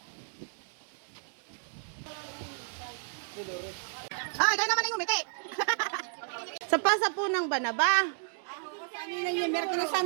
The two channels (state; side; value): silent; left; digital silence